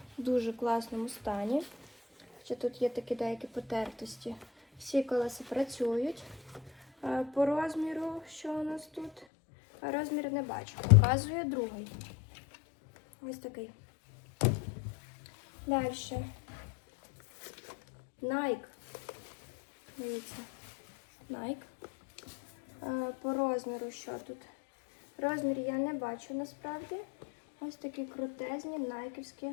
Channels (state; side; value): drops out; right; at 9.2 s